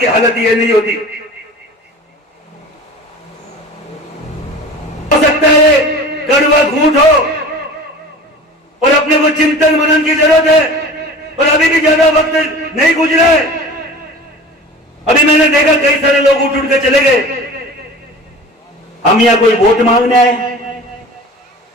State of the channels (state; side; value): normal; both; correlation 0.38